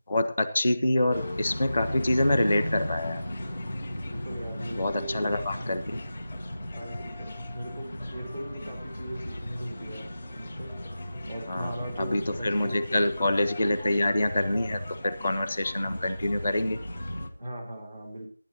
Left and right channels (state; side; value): inverted; both; correlation -0.92